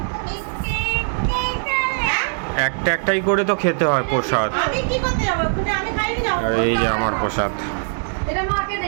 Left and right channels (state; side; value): silent; left; 65 dB below the other